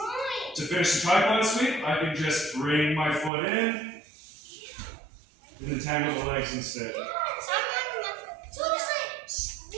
to finish the tripod sweep. I can just bring my foot in and entangle the legs instead.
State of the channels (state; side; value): drops out; left; at 3.3 s